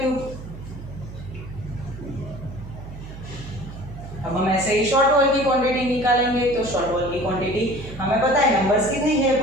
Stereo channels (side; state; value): right; noise; hum, 13 dB below the sound